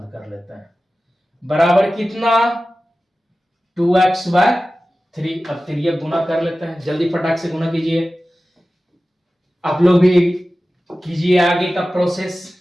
कर लेते हैं, बराबर कितना 2x/3। अब तिर्यक गुना कर लेते हैं, जल्दी फटाक से गुना कीजिए, आप लोग भी कीजिए आगे का प्रोसेस,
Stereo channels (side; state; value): both; normal; correlation 0.95